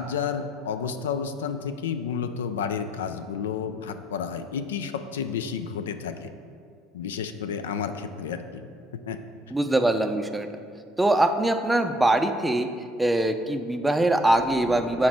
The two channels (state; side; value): normal; both; correlation 0.63